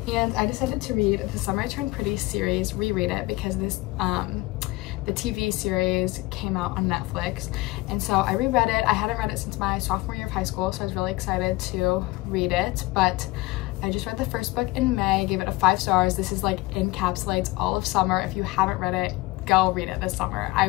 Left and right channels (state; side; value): quieter; right; 20.9 dB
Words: and I decided to read The Summer I Turned Pretty series, reread it, because this the TV series came out on Netflix, and so I reread it. I hadn't read it since my sophomore year of high school, so I was really excited to read it, but I just read the first book in May, gave it a 5 stars. This is like encapsulates all of summer. If you haven't read it, go read it this summer. I